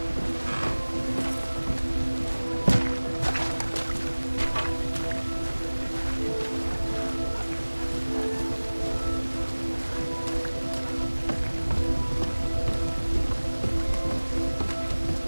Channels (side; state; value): both; inverted; correlation -1.00